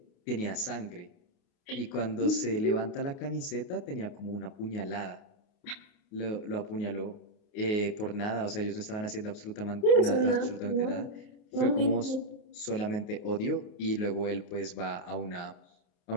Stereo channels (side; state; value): right; late; 29 ms